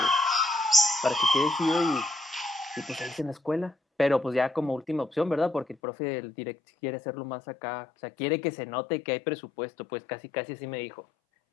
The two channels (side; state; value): right; drops out; at 5.8 s